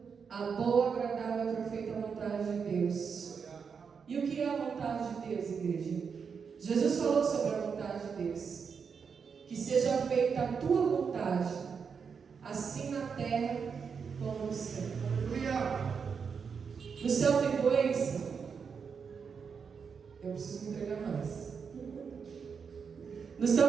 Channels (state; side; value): quieter; left; 6.1 dB